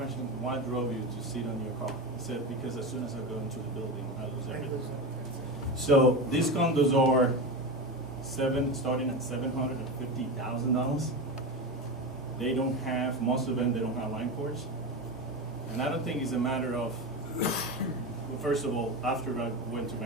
Why drove you to sit on your car? He said, because as soon as I go into the building, I lose everything. So these condos are starting at $750,000. They don't have, most of them, they don't have line cords. And I don't think it's a matter of, well, first of all, after I went to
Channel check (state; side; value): normal; both; correlation 0.21